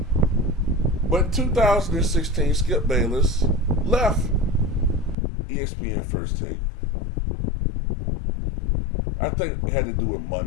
But in 2016, Skip Bayless left ESPN First Take. I think it had to do with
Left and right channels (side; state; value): right; drops out; at 5.2 s